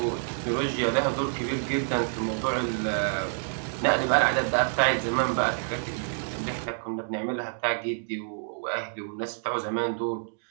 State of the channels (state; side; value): silent; left; digital silence